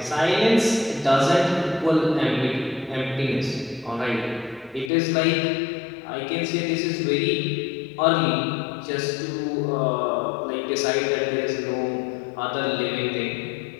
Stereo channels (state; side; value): drops out; right; at 4.9 s